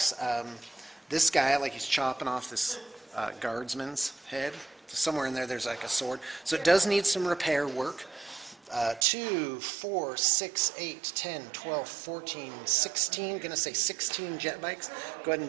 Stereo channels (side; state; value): left; drops out; at 9.1 s